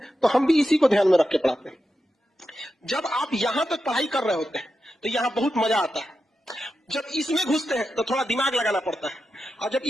तो हम भी इसी को ध्यान में रख के पढ़ाते हैं। जब आप यहां तक पढ़ाई कर रहे होते हैं तो यहां बहुत मजा आता है। जब इसमें घुसते हैं तो थोड़ा दिमाग लगाना पड़ता है, और जब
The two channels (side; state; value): both; normal; correlation 0.89